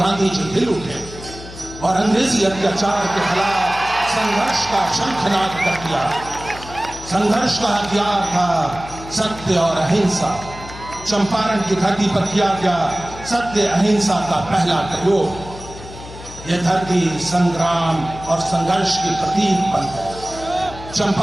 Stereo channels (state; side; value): noise; left; hum, 15 dB below the sound